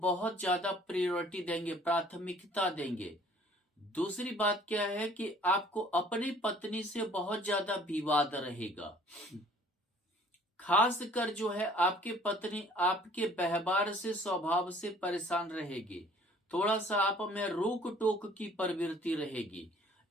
ज्यादा प्रायोरिटी देंगे, प्राथमिकता देंगे। दूसरी बात क्या है कि आपको अपनी पत्नी से बहुत ज्यादा विवाद रहेगा। खासकर जो है आपकी पत्नी आपके व्यवहार से, स्वभाव से परेशान रहेगी। थोड़ा सा आप में रोक टोक की प्रवृत्ति रहेगी,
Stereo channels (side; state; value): both; normal; correlation 0.55